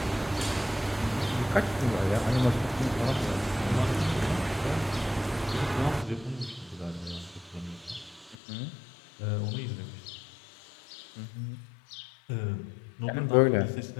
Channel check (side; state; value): right; drops out; at 8.3 s